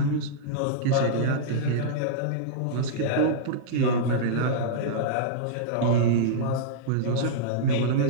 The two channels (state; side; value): different; both; correlation -0.03